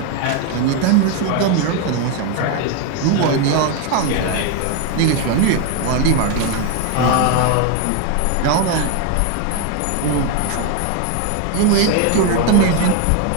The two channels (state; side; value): different; both; correlation 0.01